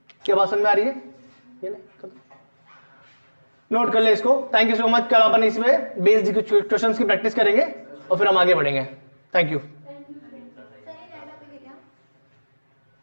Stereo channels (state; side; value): inverted; both; correlation -1.00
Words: क्या बात समझ में आ रही है? ये नोट कर ले इसको। Thank you so much. कल अपन इसमें बेस्ड क्वेश्चंस की प्रैक्टिस करेंगे और फिर हम आगे बढ़ेंगे। Thank you.